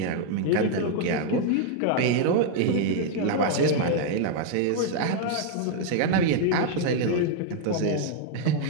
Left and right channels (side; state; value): both; different; correlation 0.00